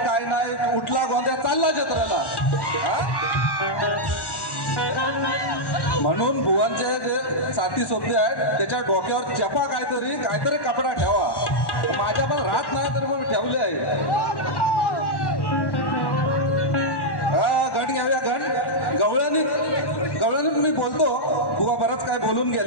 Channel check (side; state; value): right; late; 1.1 ms